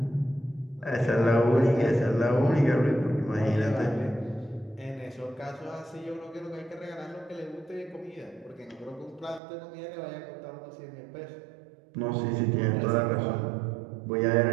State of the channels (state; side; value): drops out; left; at 9.4 s